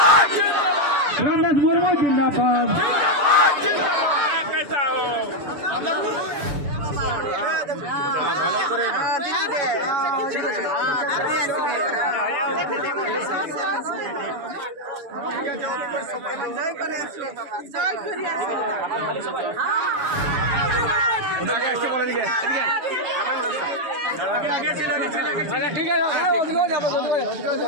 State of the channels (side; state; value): left; late; 6.9 ms